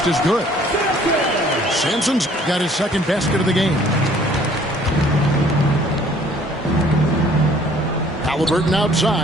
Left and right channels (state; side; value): normal; both; correlation 0.57